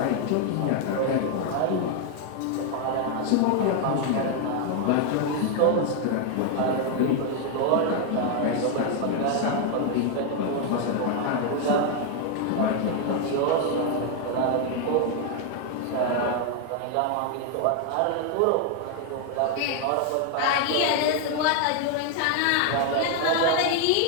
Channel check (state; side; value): different; both; correlation 0.00